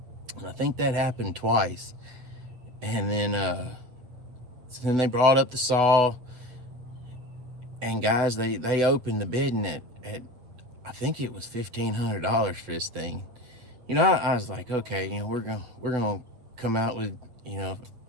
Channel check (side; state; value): left; late; 8.0 ms